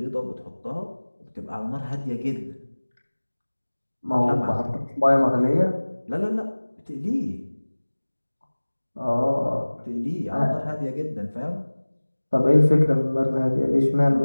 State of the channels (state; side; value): inverted; both; correlation -1.00